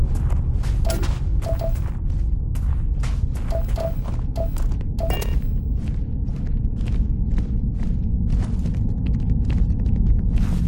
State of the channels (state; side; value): identical; both; correlation 1.00